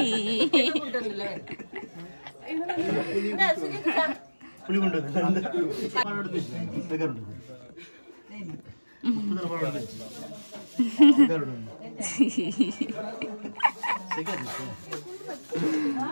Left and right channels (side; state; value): both; inverted; correlation -1.00